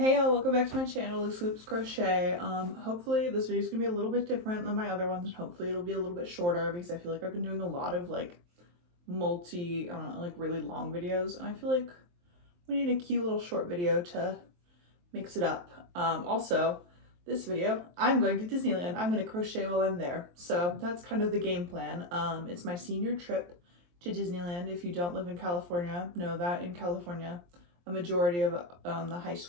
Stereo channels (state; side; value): late; left; 23 ms